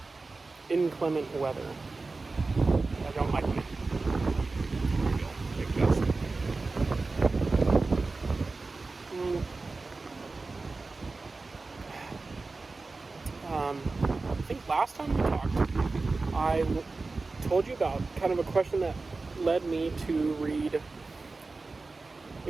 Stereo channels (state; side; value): quieter; left; 3.7 dB